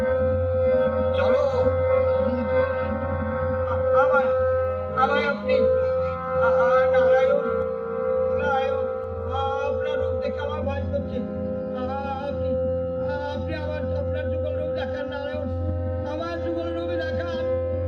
চলো। আমায় আপনি নারায়ণ, আপনার রূপ দেখে আমার ভয় করছে। আপনি আপনার যুগল রূপ দেখান নারায়ণ, আমার যুগল রূপে দেখান।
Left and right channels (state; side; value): identical; both; correlation 1.00